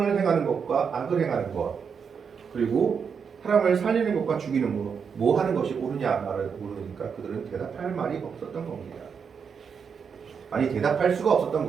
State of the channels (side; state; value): left; quieter; 6.4 dB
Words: 행하는 것과 악을 행하는 것, 그리고 사람을 살리는 것과 죽이는 것, 뭐 하는 것이 옳으냐 말을 물으니까 그들은 대답할 말이 없었던 겁니다. 아니, 대답할 수가 없었던